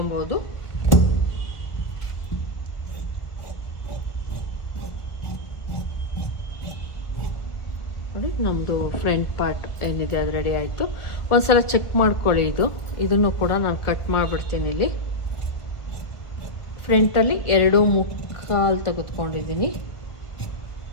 ನೋಡಿ, ನಮ್ಮದು ಫ್ರಂಟ್ ಪಾರ್ಟ್ ಏನಿದೆ ಅದು ರೆಡಿ ಆಯಿತು. ಒಂದ್ಸಲ ಚೆಕ್ ಮಾಡ್ಕೊಳ್ಳಿ. ಇದನ್ನು ಕೂಡ ನಾನು ಕಟ್ ಮಾಡಿಬಿಡ್ತೀನಿ. ಇಲ್ಲಿ ಫ್ರಂಟಲ್ಲಿ 2.25 ತೆಗೆದುಕೊಂಡಿದ್ದೀನಿ.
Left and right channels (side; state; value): right; late; 1.7 ms